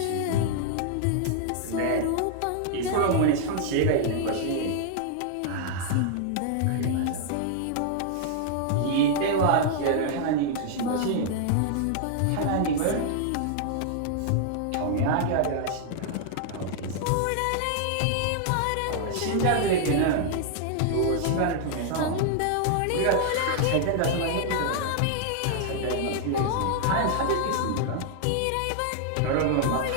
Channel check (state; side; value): different; both; correlation -0.01